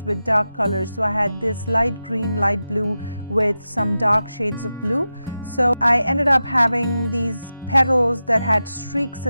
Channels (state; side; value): inverted; both; correlation -0.92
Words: with dark colors. So I had this light green, light blue with some dark shades of blue. So I ended up having these petals that had streaks